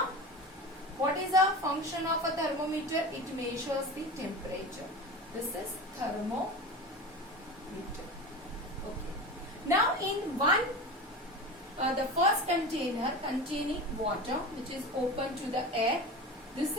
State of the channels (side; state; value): both; normal; correlation 0.30